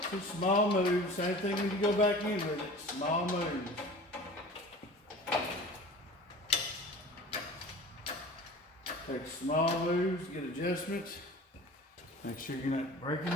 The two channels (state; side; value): normal; both; correlation 0.40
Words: Two small moves, same thing when you go back in with it, small moves. Take small moves, get adjustments. Make sure you're not breaking